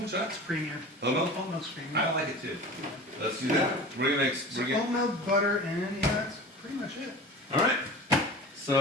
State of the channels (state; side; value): normal; both; correlation 0.36